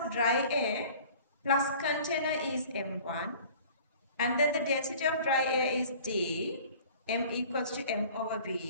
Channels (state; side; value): inverted; both; correlation -0.47